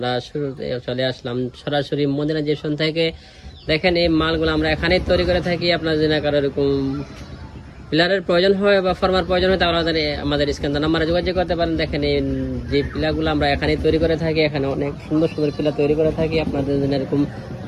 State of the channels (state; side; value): identical; both; correlation 1.00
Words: শুরুতে চলে আসলাম সরাসরি মদিনা জেশন থেকে। দেখেন এই মালগুলো আমরা এখানেই তৈরি করে থাকি। আপনার যদি কারো এরকম পিলারের প্রয়োজন হয় বা ফর্মার প্রয়োজন হয় তাহলে আমাদের স্ক্যান নাম্বারে যোগাযোগ করতে পারেন। দেখেন এই যে পিলারগুলো আমরা এখানেই তৈরি করে থাকি, এখানে অনেক সুন্দর সুন্দর পিলার তৈরি করে থাকি। আপনাদের যদি এরকম